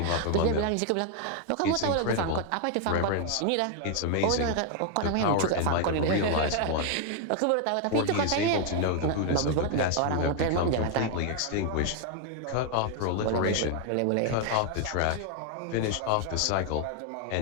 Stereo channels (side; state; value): both; different; correlation 0.00